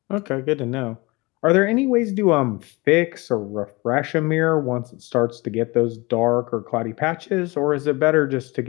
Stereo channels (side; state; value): right; quieter; 24.3 dB